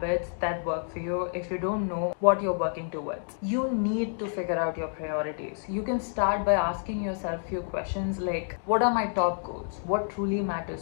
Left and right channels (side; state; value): right; silent; 59 dB below the other